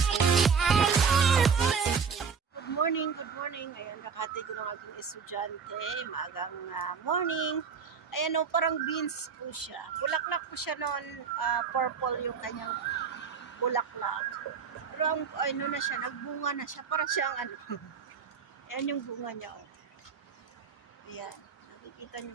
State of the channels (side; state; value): left; quieter; 6.1 dB